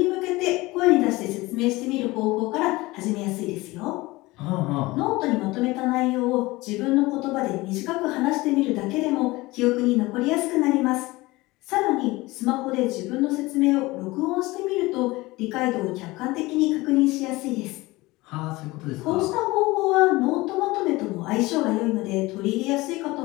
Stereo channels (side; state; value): right; quieter; 20.8 dB